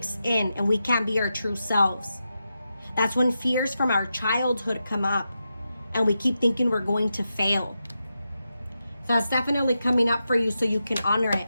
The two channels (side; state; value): both; inverted; correlation -0.88